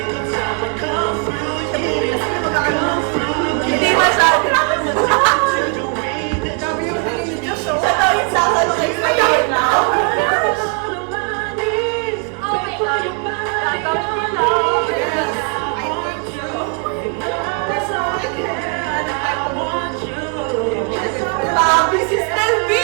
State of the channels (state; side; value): quieter; left; 38.2 dB